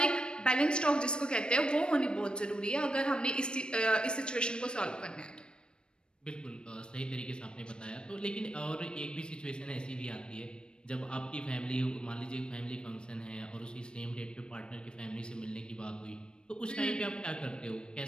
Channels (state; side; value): late; right; 0.053 ms